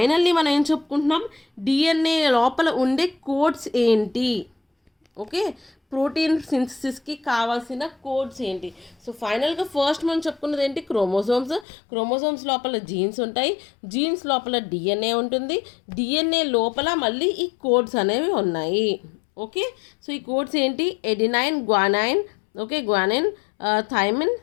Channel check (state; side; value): drops out; right; at 11.7 s